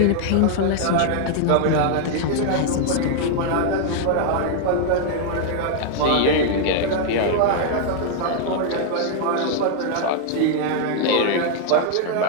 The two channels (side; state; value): both; different; correlation 0.00